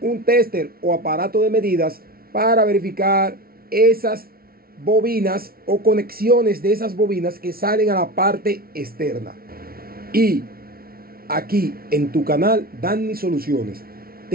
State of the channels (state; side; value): late; left; 0.44 ms